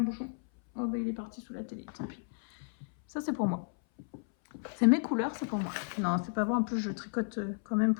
bouchon. Oh bah il est parti sous la télé, tant pis. Ça c'est pour moi. C'est mes couleurs, c'est pour moi. Non, c'est pas vrai, en plus je tricote quand même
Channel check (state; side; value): silent; right; 56 dB below the other